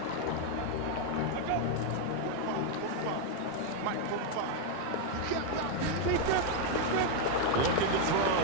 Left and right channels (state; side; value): different; both; correlation 0.00